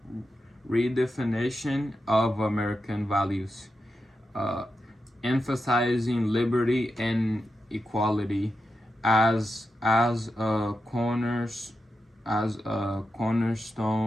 redefinition of American values, emphasizing liberty and equality as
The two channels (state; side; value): normal; both; correlation 0.88